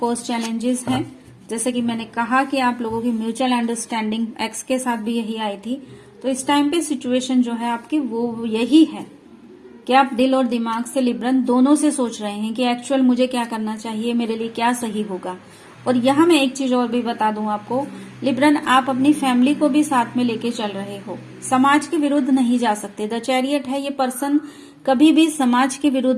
चैलेंजेस हैं। जैसे कि मैंने कहा कि आप लोगों की म्यूचुअल अंडरस्टैंडिंग एक्स के साथ भी यही आई थी। तो इस टाइम पे सिचुएशन जो है आपकी वो यही है कि आप दिल और दिमाग से, लिब्रन दोनों से सोच रहे हैं कि एक्चुअल मुझे क्या करना चाहिए, मेरे लिए क्या सही होगा। और यहाँ मैं एक चीज और भी बता दूं आपको, लिब्रन आप अपनी फैमिली को भी साथ में लेके चल रहे हो, समाज के विरुद्ध नहीं जा सकते। द चैरियट है, ये पर्सन कभी भी समाज के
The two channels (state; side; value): identical; both; correlation 1.00